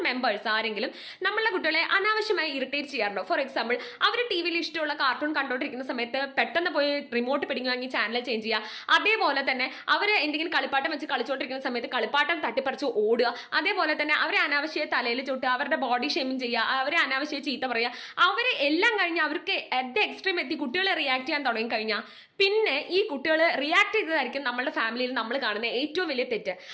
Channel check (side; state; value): both; identical; correlation 1.00